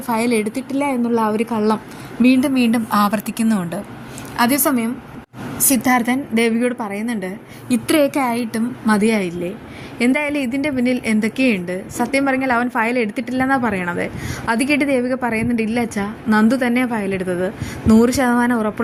ഫയൽ എടുത്തിട്ടില്ല എന്നുള്ള ആ ഒരു കള്ളം വീണ്ടും വീണ്ടും ആവർത്തിക്കുന്നുമുണ്ട്. അതേസമയം സിദ്ധാർത്ഥൻ ദേവികയോട് പറയുന്നുണ്ട്, ഇത്രയൊക്കെ ആയിട്ടും മതിയായില്ലേ? എന്തായാലും ഇതിൻ്റെ പിന്നിൽ എന്തൊക്കെയുണ്ട്? സത്യം പറഞ്ഞാൽ അവൻ ഫയൽ എടുത്തിട്ടില്ലെന്നാണ് പറയണത്. അത് കേട്ട് ദേവിക പറയുന്നുണ്ട്, ഇല്ല അച്ഛാ, നന്ദു തന്നെയാണ് ഫയൽ എടുത്തത്. 100%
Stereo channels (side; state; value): both; identical; correlation 1.00